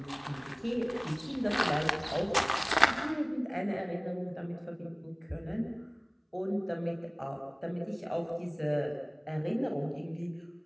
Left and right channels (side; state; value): both; identical; correlation 1.00